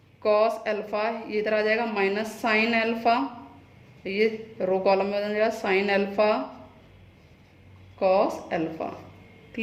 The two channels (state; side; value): identical; both; correlation 1.00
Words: कॉस एल्फा, ये इधर आ जाएगा माइनस साइन एल्फा, ये रो कॉलम में हो जाएगा sign alpha cos alpha.